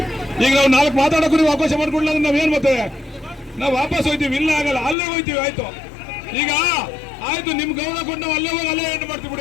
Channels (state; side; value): drops out; right; at 5.0 s